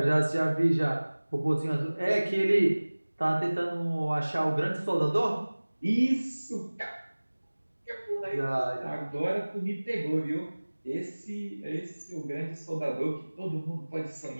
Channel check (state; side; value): inverted; both; correlation -1.00